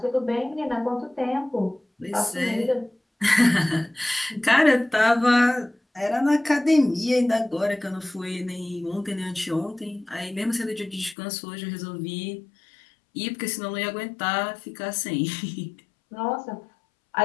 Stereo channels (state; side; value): drops out; right; at 11.2 s